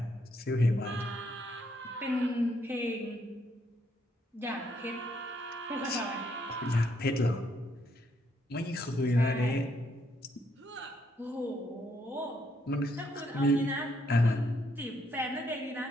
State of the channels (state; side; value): normal; both; correlation 0.73